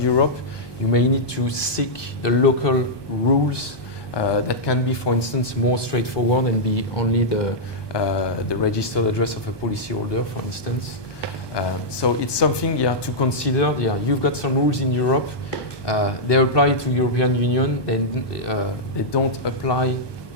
you may need to seek the local rules that can be, for instance, more straightforward and be only the registered address of a policyholder, for instance. So it's something, yeah, to consider. Yeah, you've got some rules in Europe. They apply to European Union, and they don't apply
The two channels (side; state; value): right; late; 1.2 ms